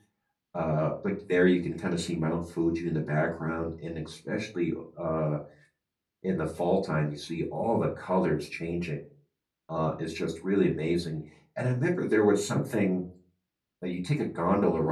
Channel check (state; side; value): identical; both; correlation 1.00